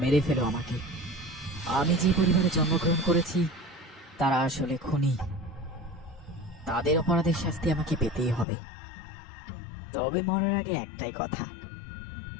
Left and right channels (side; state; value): right; drops out; at 8.5 s